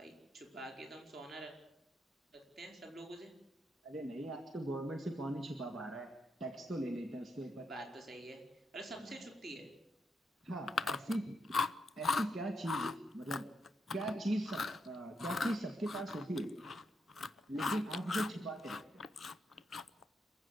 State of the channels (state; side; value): normal; both; correlation 0.81